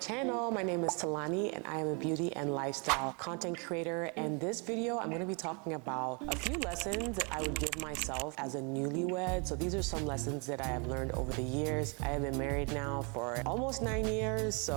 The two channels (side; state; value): left; quieter; 34.2 dB